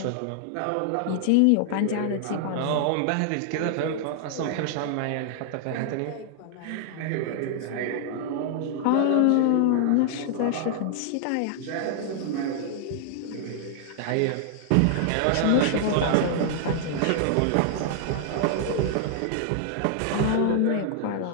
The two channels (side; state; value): both; different; correlation 0.00